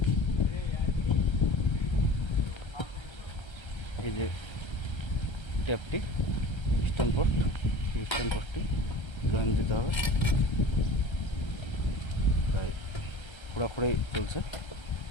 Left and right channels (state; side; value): late; right; 1.3 ms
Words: এই যে ট্যাপটি ইস্টার্ন পোস্টটি জয়েন্ট দিতে হবে। তাই খোঁড়াখুড়াই চলছে,